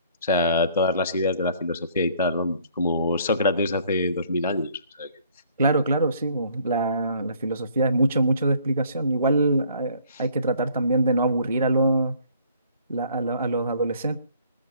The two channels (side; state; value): both; inverted; correlation -0.59